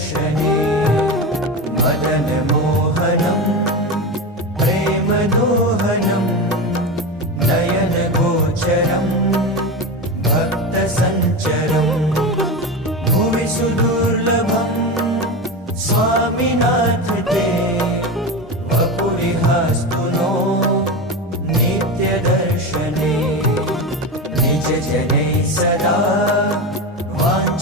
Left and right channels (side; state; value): both; normal; correlation 0.21